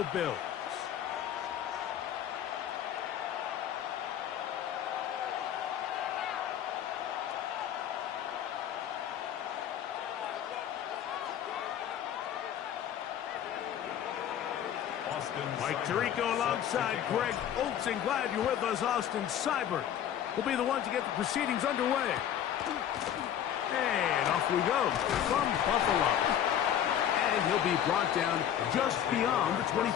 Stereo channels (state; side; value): quieter; right; 10.1 dB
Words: Bills. Mike Tirico alongside Greg Olson. Glad you're with us. Austin Seibert will be the one to get the proceedings underway. And off we go from Buffalo. And he'll be brought down just beyond the